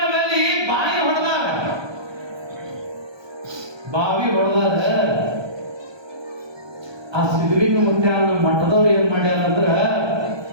ಬಾವಿ ಹೊಡೆದಾರ, ಬಾವಿ ಹೊಡೆದಾರ. ಆ ಸಿದ್ಧಲಿಂಗ ಮುತ್ಯಾನ ಮಠದವ್ರು ಏನ್ ಮಾಡ್ಯಾರ ಅಂದ್ರ,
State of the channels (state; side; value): late; left; 1.2 ms